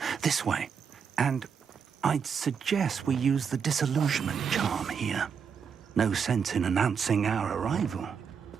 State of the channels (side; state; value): left; quieter; 6.7 dB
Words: This way. And I'd suggest we use the disillusionment charm here. No sense in announcing our arrival.